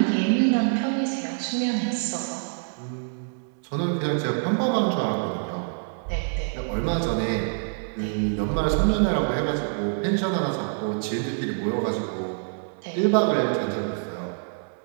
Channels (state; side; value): silent; left; 61 dB below the other